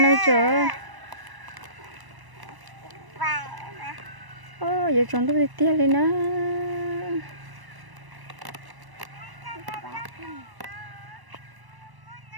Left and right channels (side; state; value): left; late; 1.0 ms